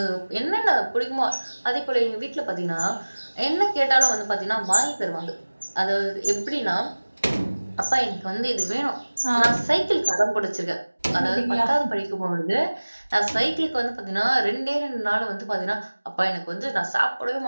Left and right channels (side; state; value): both; inverted; correlation -1.00